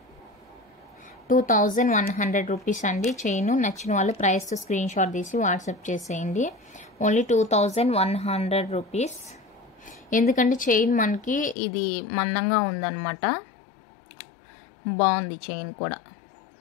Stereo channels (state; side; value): drops out; right; at 11.6 s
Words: 2100 రూపీస్ అండి చైన్. నచ్చిన వాళ్ళు ప్రైస్తో స్క్రీన్ షాట్ తీసి వాట్సాప్ చేసేయండి. Only 2100 rupees. ఎందుకంటే చైన్ మనకి ఇది మందంగా ఉందన్నమాట, బాగుంది చైన్ కూడా.